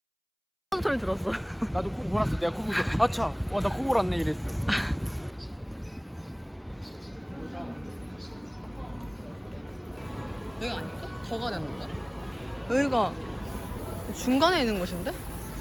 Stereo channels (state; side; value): identical; both; correlation 1.00